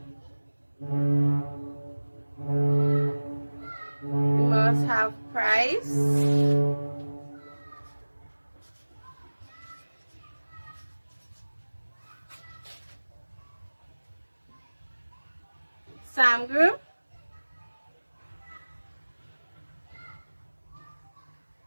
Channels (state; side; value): inverted; both; correlation -1.00